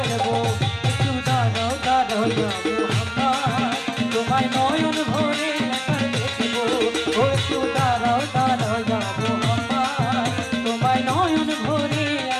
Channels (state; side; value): identical; both; correlation 1.00